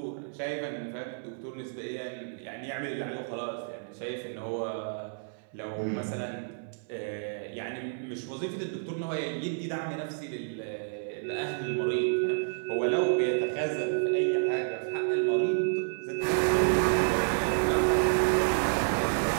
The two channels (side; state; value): left; silent; 58 dB below the other